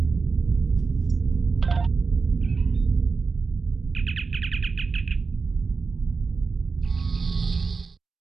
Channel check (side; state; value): left; quieter; 4.6 dB